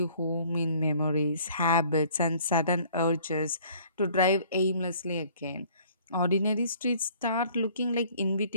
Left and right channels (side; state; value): both; inverted; correlation -0.55